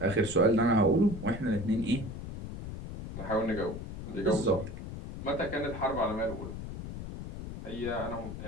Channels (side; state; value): left; noise; rumble, 9 dB below the sound